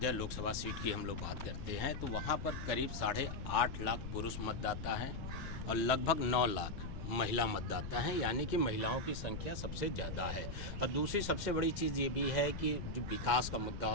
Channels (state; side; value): noise; left; rumble, 7 dB below the sound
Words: लोकसभा सीट की हम लोग बात करते हैं तो वहाँ पर करीब 8.5 लाख पुरुष मतदाता हैं और लगभग 9 लाख महिला मतदाता हैं, यानी कि महिलाओं की संख्या सबसे ज़्यादा है। और दूसरी सबसे बड़ी चीज़ ये भी है कि जो विकास का मुद्दा